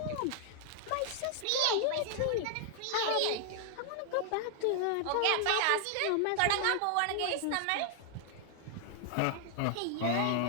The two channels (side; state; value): both; different; correlation 0.00